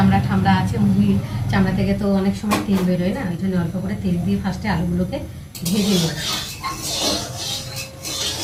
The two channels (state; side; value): identical; both; correlation 1.00